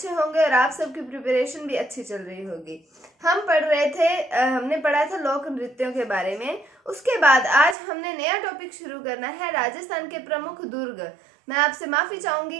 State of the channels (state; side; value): drops out; left; at 7.8 s